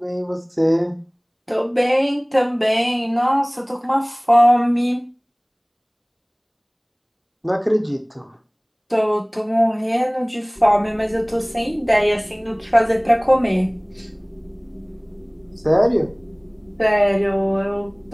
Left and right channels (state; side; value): identical; both; correlation 1.00